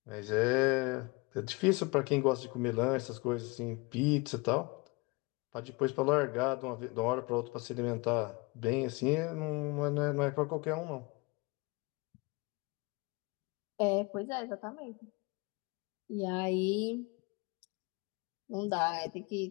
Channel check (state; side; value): quieter; right; 26.7 dB